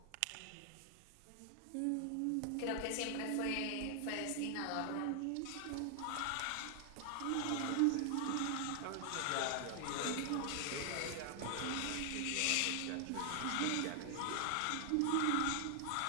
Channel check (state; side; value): different; both; correlation 0.00